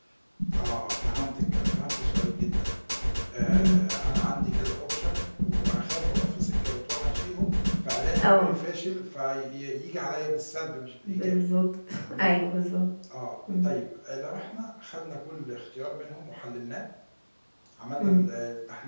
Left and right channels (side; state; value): both; inverted; correlation -1.00